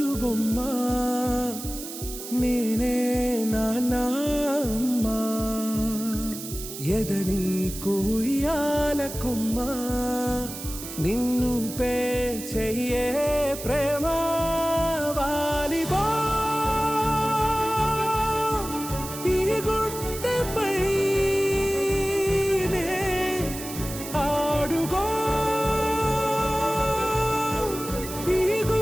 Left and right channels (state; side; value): noise; right; hiss, 10 dB below the sound